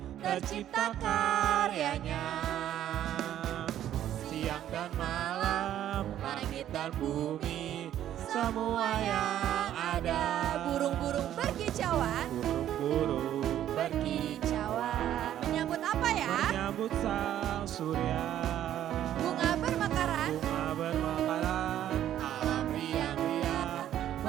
Tercipta karyanya. Siang dan malam, langit dan bumi, semua yang ada. Burung-burung berkicauan. Burung-burung Berkicauan. Menyambut apa ya? menyambut sang surya. Bunga bermekaran. Alam riang-riang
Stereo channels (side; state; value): left; quieter; 11.5 dB